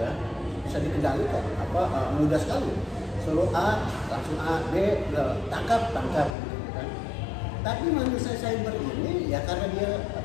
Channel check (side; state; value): right; drops out; at 6.4 s